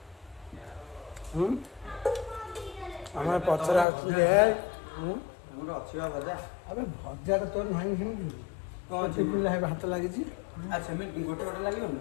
हमारे पचरा आछे हमर अछिवा भजा अबे भजा तो तोर नाही हिमि कौन चिपिला है हाथ लागि छी अच्छा मैं गोटे गोटे लागि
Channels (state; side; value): drops out; right; at 3.9 s